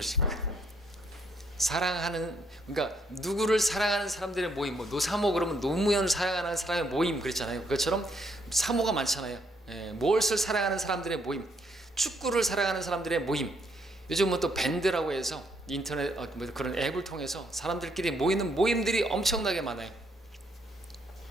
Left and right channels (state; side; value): normal; both; correlation 0.72